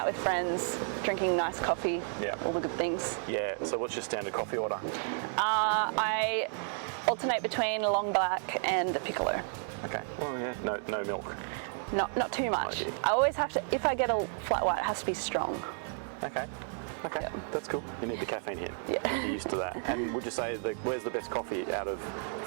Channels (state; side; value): silent; left; 56 dB below the other